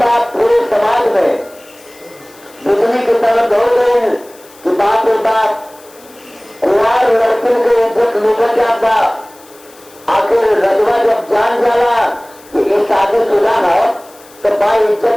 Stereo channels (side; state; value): left; noise; hiss, 25 dB below the sound